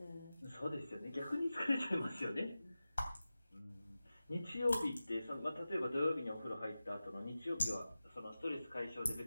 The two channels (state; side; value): inverted; both; correlation -0.95